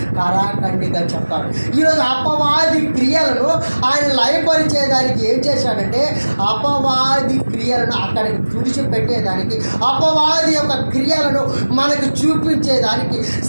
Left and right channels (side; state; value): both; inverted; correlation -1.00